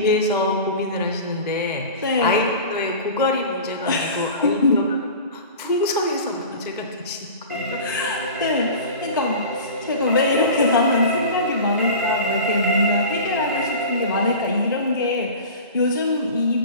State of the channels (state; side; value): inverted; both; correlation -0.35